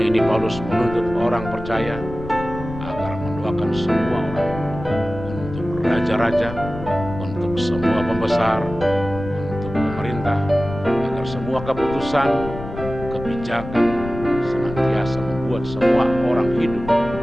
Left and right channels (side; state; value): left; noise; rumble, 10 dB below the sound